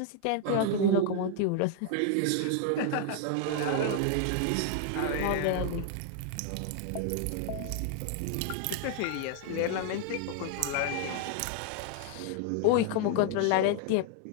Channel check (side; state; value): both; different; correlation 0.00